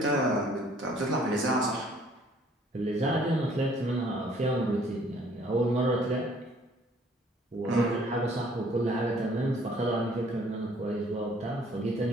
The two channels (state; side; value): normal; both; correlation 0.59